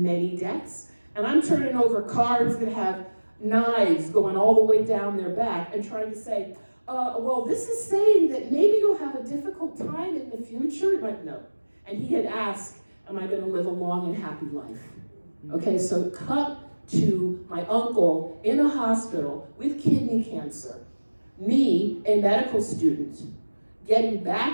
many decks. And I'm turning over cards that have knives going all the way down their back and trying to say, well, this is saying that maybe you'll have a difficult time in the future. Like, no. And he had asked, am I going to live a long and happy life? Okay, so cut to my uncle in a hospital with kidney cancer. Me, a medical student, getting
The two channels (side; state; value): both; inverted; correlation -1.00